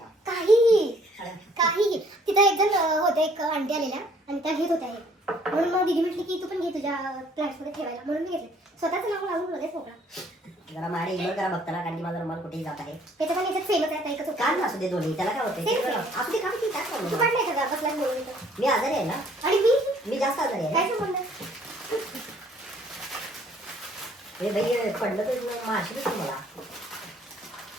काहीही तिथं एक जण होते, एक आंटी आलेल्या आणि त्या घेत होत्या हे. म्हणून मग दीदी म्हटली की तू पण घे तुझ्या प्लांट्स मध्ये ठेवायला, म्हणून मी घेतले. स्वतःच नाव लावून लगेच मोकळा. जरा माझ्या इग्नोर करा बघताना, कारण की माझा रुमाल कुठेही जात आहे. त्याच्या पण याच्यात फेमस आहे, एकच होता. काढ ना असू दे दोन्ही, त्याला काय होते Same, same. असू दे, काढ की, काय तू problem? काढलाय का बसलाच बोलून तर? मी आजारी आहे ना, आणि मी जास्त आजारी काय आहे. संबंध? हे बाई पडलं तर माशी मला.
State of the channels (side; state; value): both; normal; correlation 0.60